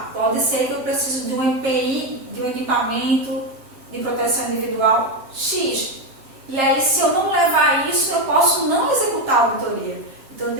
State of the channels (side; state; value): left; late; 7.6 ms